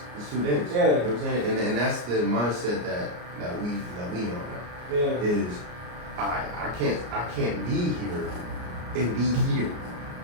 It's too dense. Yeah. You know what I'm saying? And that's the mindset that we on now. Yeah. Is I can't be here and be here.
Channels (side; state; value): left; late; 33 ms